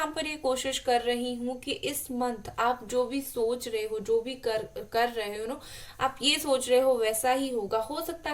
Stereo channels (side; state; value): both; identical; correlation 1.00